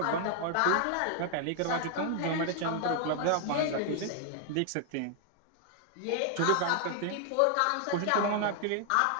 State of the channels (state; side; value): different; both; correlation 0.00